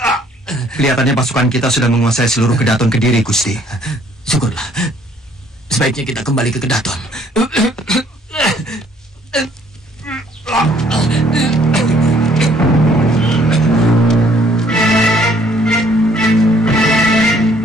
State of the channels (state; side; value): normal; both; correlation 0.62